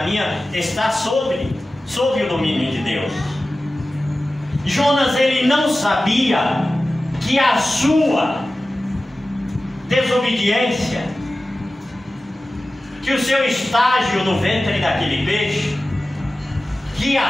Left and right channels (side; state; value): both; normal; correlation 0.95